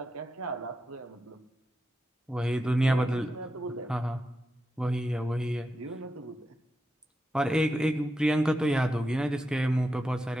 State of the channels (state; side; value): normal; both; correlation 0.88